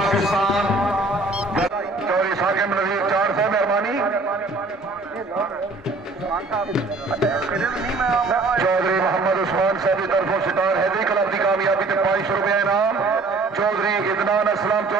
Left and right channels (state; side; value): quieter; left; 3.5 dB